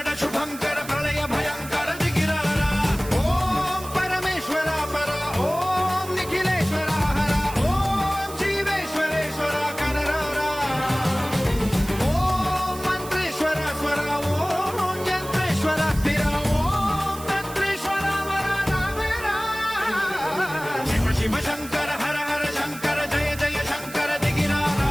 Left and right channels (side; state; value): right; noise; hiss, 14 dB below the sound